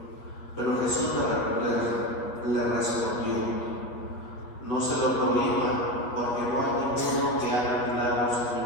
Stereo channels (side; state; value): right; late; 8.4 ms